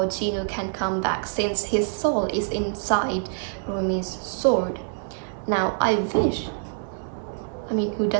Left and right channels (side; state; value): left; silent; 61 dB below the other